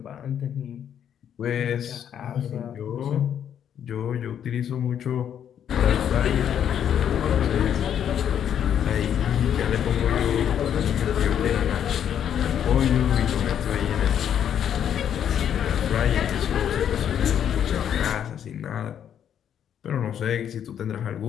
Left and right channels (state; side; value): quieter; right; 9.2 dB